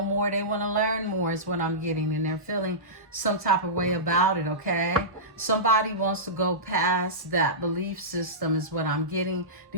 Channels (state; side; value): normal; both; correlation -0.18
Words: more. They want to learn more is what I'm getting, and they're feeling some type of way about it, okay? Somebody wants to go past that belief system is what I'm getting.